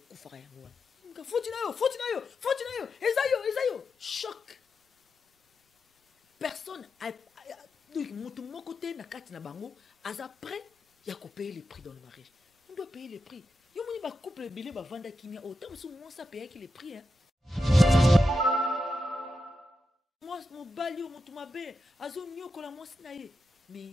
kufara ya ngwa. Faut na yo. Ezayo. Choc. Personne a mutu moko te na kati na bango, aza prêt ya ko payer les prix dans le mariage. On doit payer les prix. Yo moni ba couple belé ba vanda kimia autant sou moi ça payer les prix hein. Moi mon balio mutu mabe, azo nyoko la moi sinaye.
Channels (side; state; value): both; normal; correlation 0.88